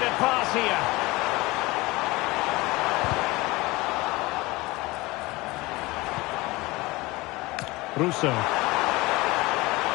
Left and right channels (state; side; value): quieter; right; 21.7 dB